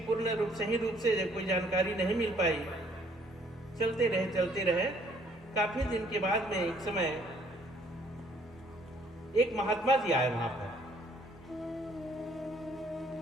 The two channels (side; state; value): both; normal; correlation 0.62